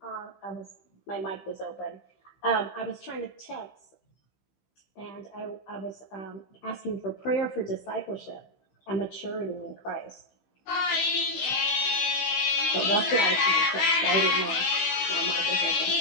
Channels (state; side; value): late; right; 15 ms